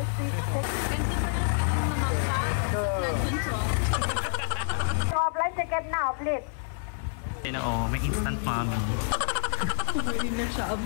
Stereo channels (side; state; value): right; silent; 59 dB below the other